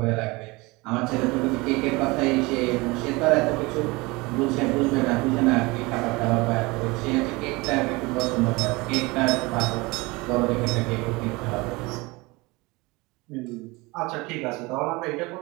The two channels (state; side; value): quieter; left; 23.9 dB